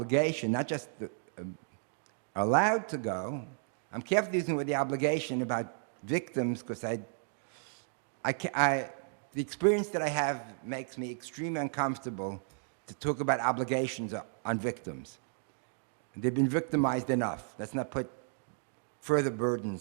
not just allowed to go. I'm careful using the word the obligation about victims because the experience that I have makes me extremely uncomfortable to talk about obligations on victims. They've been victimized enough. Let's not put further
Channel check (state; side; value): silent; left; digital silence